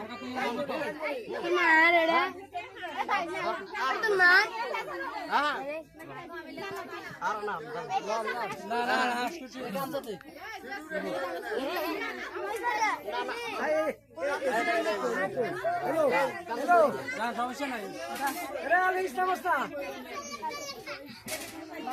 মার এডা তো মার হ্যাঁ আর না না না হাসকুচি কাম করতে হ্যালো হ্যালো না সমস্যা নাই এরা আলিস নমস্কার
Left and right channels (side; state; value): both; identical; correlation 1.00